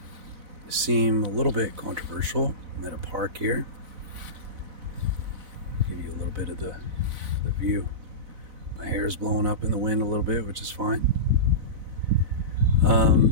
seem a little bit controversial. I'm at a park here. Give you a little bit of the view. My hair is blowing up in the wind a little bit, which is fine.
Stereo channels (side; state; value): left; late; 4.0 ms